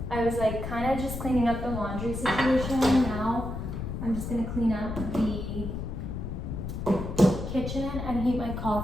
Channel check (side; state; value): left; noise; rumble, 5 dB below the sound